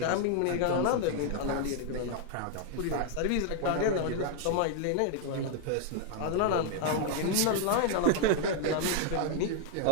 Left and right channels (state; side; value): different; both; correlation 0.00